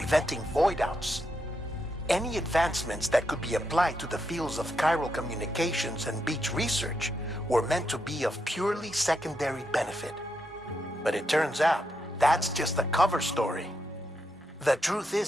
void-outs. Any advancements that could be applied to the fields of chiral communications and beach research were meant to be of purely secondary benefit. But it turns out, that's just the cover story. The truth is,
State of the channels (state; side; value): normal; both; correlation 0.82